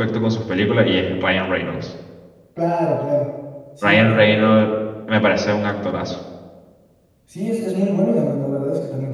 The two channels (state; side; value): identical; both; correlation 1.00